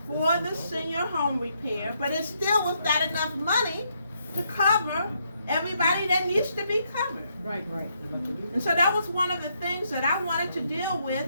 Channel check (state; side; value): inverted; both; correlation -0.76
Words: for the senior home repair, but it still was not enough money to cover everybody that needs to be covered. Right. And so that was one of the things that I wanted to deal